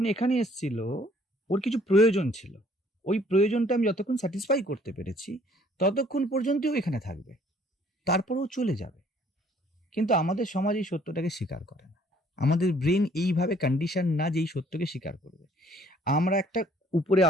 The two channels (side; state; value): both; normal; correlation 0.60